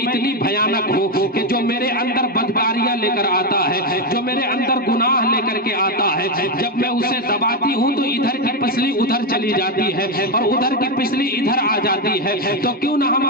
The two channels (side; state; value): both; normal; correlation 0.07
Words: بھیانک ہوں کہ جو میرے اندر بدکاریاں لے کر آتا ہے، جو میرے اندر گناہ لے کر کے آتا ہے، جب میں اسے دباتی ہوں تو ادھر کی پسلی ادھر چلی جاتی ہے اور ادھر کی پسلی ادھر آ جاتی ہے۔ تو کیوں نہ ہم